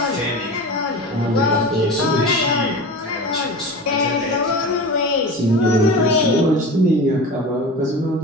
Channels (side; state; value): both; normal; correlation 0.31